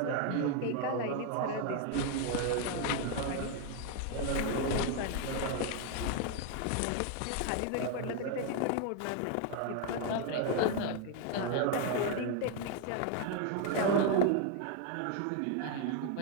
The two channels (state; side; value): different; both; correlation 0.00